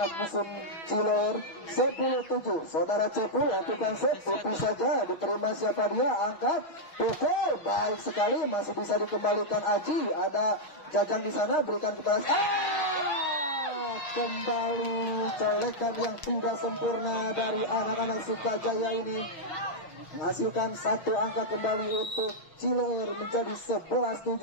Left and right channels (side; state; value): right; late; 6.5 ms